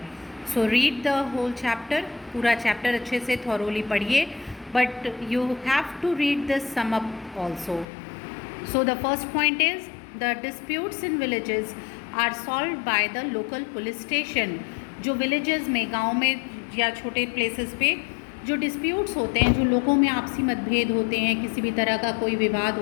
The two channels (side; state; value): right; drops out; at 7.9 s